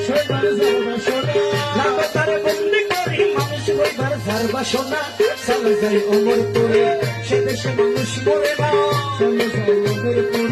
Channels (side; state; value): both; identical; correlation 1.00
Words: হইবার যার বাসনা। রাখো তারে বন্দি করি, মানুষ হইবার যার বাসনা। চলো যাই ওমরপুরে, সে দেশে মানুষ মরে না। চলো যাই